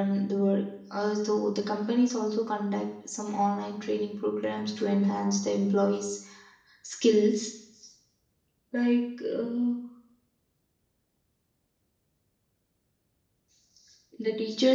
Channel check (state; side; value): identical; both; correlation 1.00